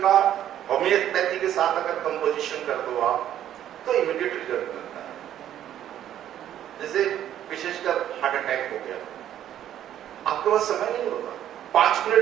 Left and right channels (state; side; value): quieter; left; 11.2 dB